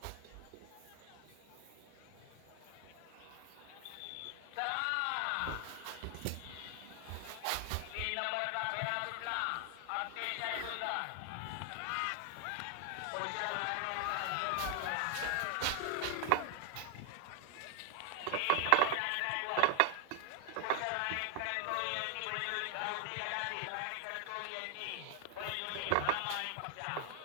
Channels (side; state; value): both; different; correlation 0.00